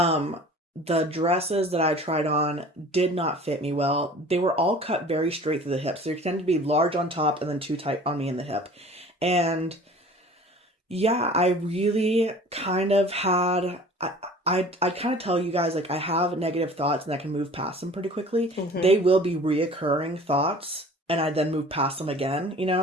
the dresses that I tried on did not fit me well. They were all cut very straight through the hips. They tend to be large on top and then too tight on me in the hip. And yeah, I really kind of had, I kind of tell you guys, like, I have negative thoughts and I can move past them pretty quickly. They will be reoccurring thoughts and I then move past them again, you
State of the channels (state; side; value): normal; both; correlation 0.45